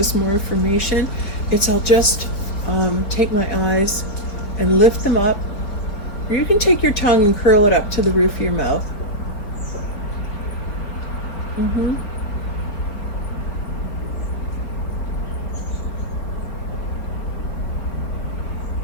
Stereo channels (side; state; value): right; late; 4.3 ms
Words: more information, I'll just take my eyes and lift them up. Or you can take your tongue and curl it up to the roof of your mouth.